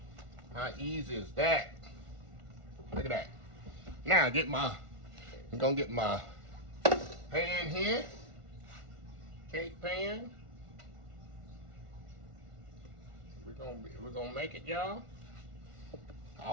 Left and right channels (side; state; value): left; late; 1.5 ms